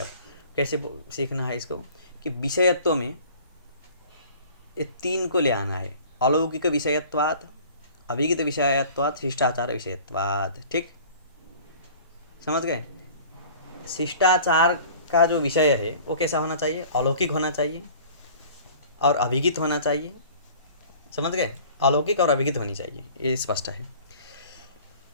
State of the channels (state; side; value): inverted; both; correlation -0.47